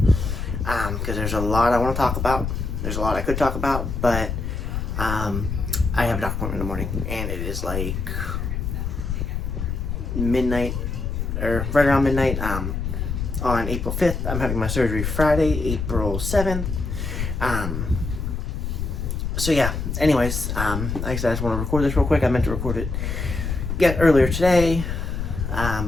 Because there's a lot I want to talk about. There's a lot I could talk about, but I have a doctor appointment in the morning, and it is like midnight, or right around midnight, on April 5th. I'm having my surgery Friday, April 7th. So yeah, anyways, like I said, I just want to record this real quick. I meant to record it earlier today,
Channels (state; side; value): noise; left; rumble, 3 dB below the sound